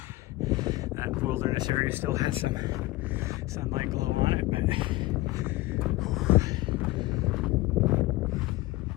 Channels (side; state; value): right; quieter; 18.8 dB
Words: that wilderness area still has some sunlight glow on it, but